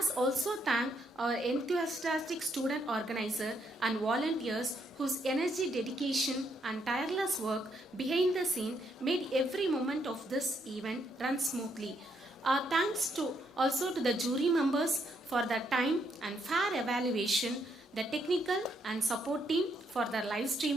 also thank our enthusiastic student organizer and volunteers whose energy, dedication and tireless work behind the scene made every moment of this event run smoothly. Thanks to also to the jury members for their time and fair evaluation, the technical and support team for their live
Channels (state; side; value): normal; both; correlation 0.74